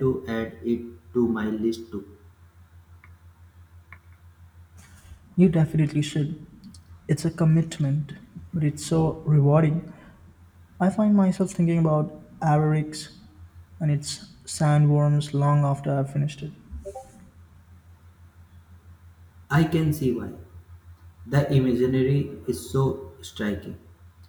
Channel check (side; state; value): both; identical; correlation 1.00